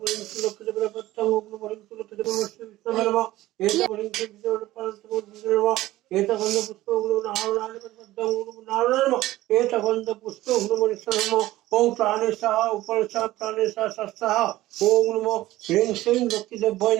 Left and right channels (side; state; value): left; quieter; 16.4 dB